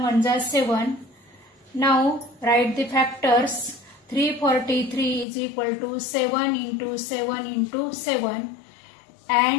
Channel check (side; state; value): right; drops out; at 5.2 s